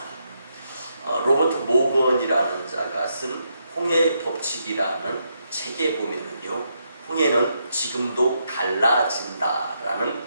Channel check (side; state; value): both; inverted; correlation -0.79